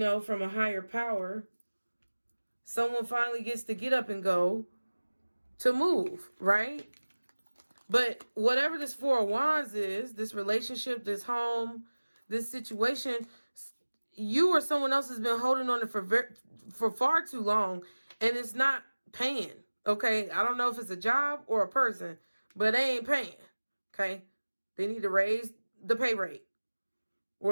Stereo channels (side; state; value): both; inverted; correlation -1.00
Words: from a higher power, someone finally gets to get up and go to move, right? But whatever this Four of Wands is, this relationship, this home, this situation, you or someone else has been holding on it for far too long, and it's not paying, okay? I don't know if it's a job or a person, but they ain't paying, okay? They need to raise the pay rate,